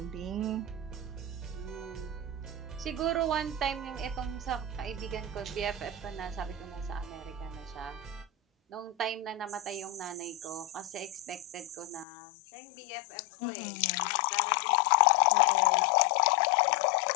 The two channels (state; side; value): drops out; right; at 12.1 s